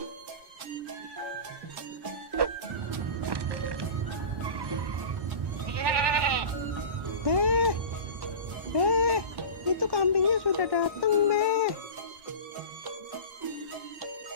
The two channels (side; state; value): left; late; 1.1 ms